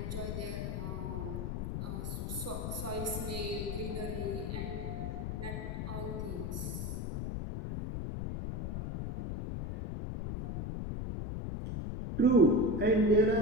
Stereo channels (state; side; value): noise; left; rumble, 3 dB below the sound